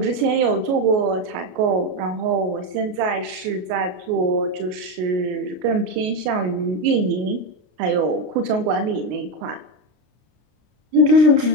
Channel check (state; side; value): late; left; 33 ms